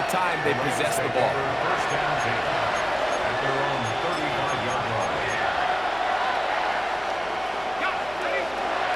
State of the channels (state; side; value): noise; left; hum, 22 dB below the sound